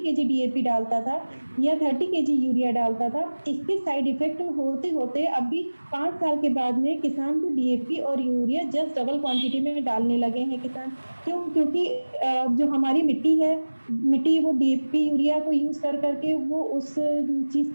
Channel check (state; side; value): inverted; both; correlation -1.00